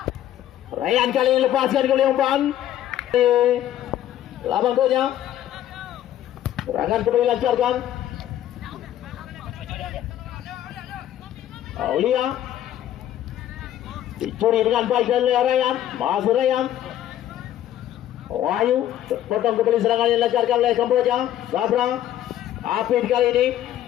Ryan kali ini lepaskan ke umpan. Labang bola. Serangan kembali lancarkan. Aulia. Dicuri dengan baik oleh Ryan. Masih Ryan. Wahyu. Potong kembali serangan yang dilancarkan oleh Kamboja. Sabra. Apit kali ini.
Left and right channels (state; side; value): quieter; right; 12.1 dB